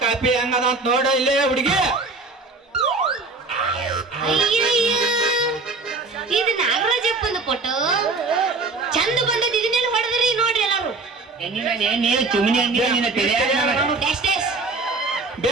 ಕಾಪಿ ಹೆಂಗದ ಅಂತ ನೋಡ ಇಲ್ಲೇ ಹುಡುಗಿ. ಇದು ನಾಗರಾಜಪ್ಪಂದು ಫೋಟೋ ಚಂದ ಬಂದದ. ಇದನ್ನೆಲ್ಲ ಹೊಡೆದ್ರಿ ನೋಡ್ರಿ ಎಲ್ಲಾರು.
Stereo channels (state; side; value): quieter; left; 3.7 dB